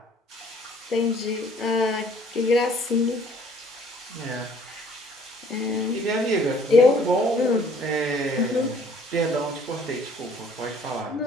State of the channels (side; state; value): both; normal; correlation 0.57